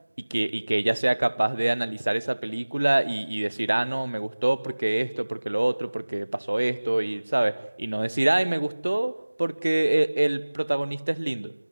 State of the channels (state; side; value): inverted; both; correlation -1.00